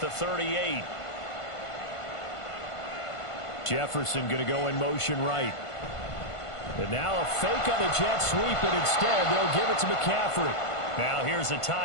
the 38. Jefferson going to go in motion right. And now a fake on the jet sweep, and instead they'll give it to McCaffrey. Now here's a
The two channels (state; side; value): late; right; 1.5 ms